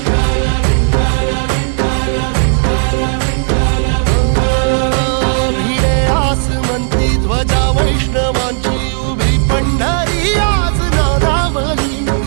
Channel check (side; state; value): left; silent; 56 dB below the other